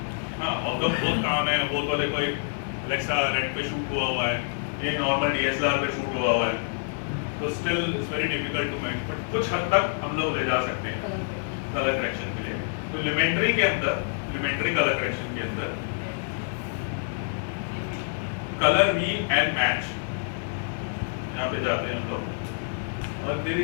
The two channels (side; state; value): right; silent; digital silence